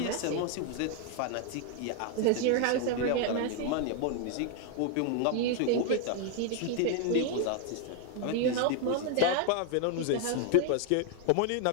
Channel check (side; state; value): both; different; correlation 0.01